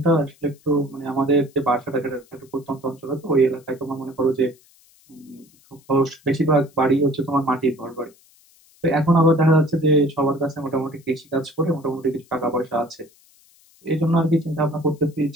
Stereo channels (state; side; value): noise; left; hiss, 30 dB below the sound